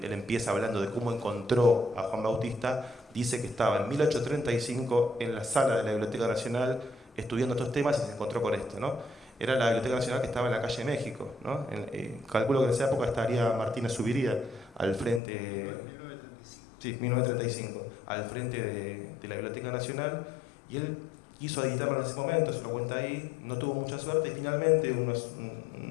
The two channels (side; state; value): right; drops out; at 15.2 s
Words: empieza hablando de cómo encontró a Juan Bautista, dice que estaba en 1835 en la sala de la Biblioteca Nacional estudiando estos temas y se encontró con esto, ¿no? Era la Biblioteca Nacional que estaba en la calle México, ¿no? Calculo que en esa época estaría Martínez Subiría al frente... 1935. Sí, 1935, al frente de la Biblioteca Nacional, y él quiso editarlo en ese momento, se lo cuenta ahí, no tuvo mucha suerte y finalmente, unos